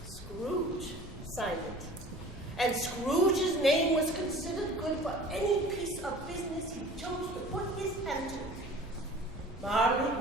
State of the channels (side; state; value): both; normal; correlation 0.44